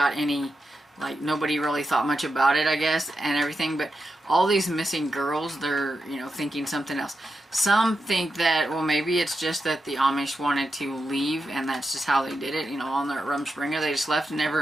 any, like, nobody really thought much about it, I guess, and everything. But all these missing girls, they're, you know, thinking something else. Some think that, well, maybe it's just that the Amish wanted to leave, and that's just how they did it, you know, on their Rumspringa. They just left and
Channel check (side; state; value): both; normal; correlation 0.88